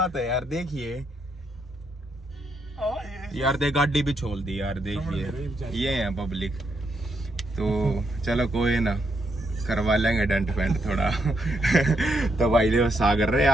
है यार। देखिए यार, दे गाड़ी भी छोड़ दी यार। देखिए ये है पब्लिक। तो चलो कोई ना, करवा लेंगे डेंट पेंट थोड़ा। तो भाई देखो सागर रहे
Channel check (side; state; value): both; normal; correlation 0.78